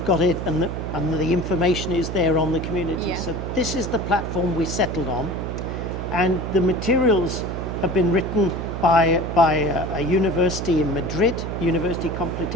got it, and the information is there on the community. Yeah. So this is the platform we settled on, and the materials have been written by a university in Madrid, University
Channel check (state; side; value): noise; right; hum, 5 dB below the sound